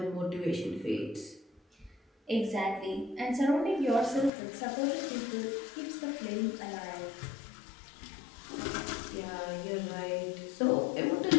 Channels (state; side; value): drops out; right; at 4.3 s